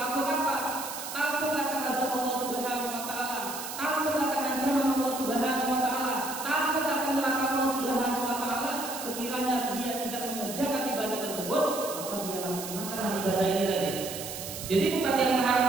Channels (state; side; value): noise; right; hiss, 8 dB below the sound